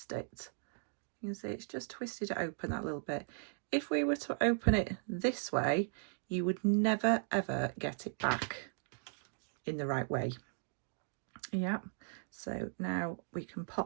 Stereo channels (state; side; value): silent; left; digital silence